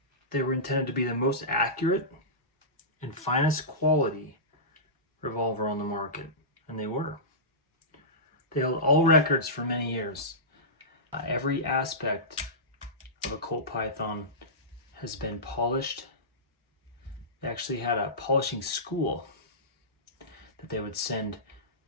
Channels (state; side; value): normal; both; correlation -0.19